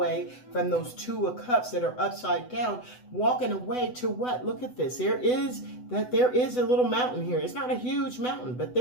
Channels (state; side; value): late; right; 8.0 ms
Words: from those 2 of cups that are upside down. Walking away to what? Look at this. There is a little mountain here. It's not a huge mountain, but